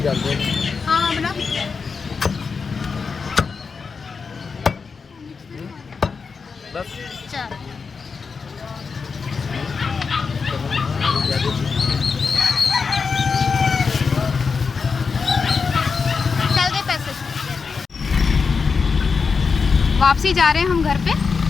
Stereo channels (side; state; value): right; quieter; 5.2 dB